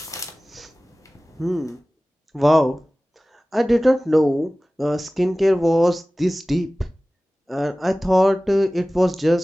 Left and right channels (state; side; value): normal; both; correlation 0.97